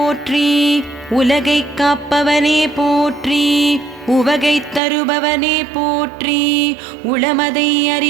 உலகை காப்பவனே போற்றி, உவகை தருபவனே போற்றி, உளமதை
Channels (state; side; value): drops out; left; at 4.8 s